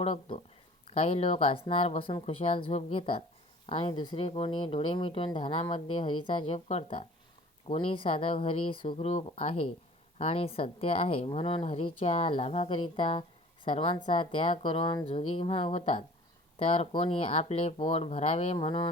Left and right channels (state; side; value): normal; both; correlation 0.47